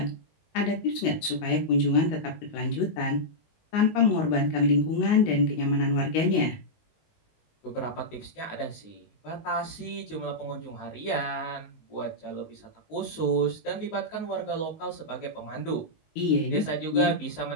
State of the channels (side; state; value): right; late; 19 ms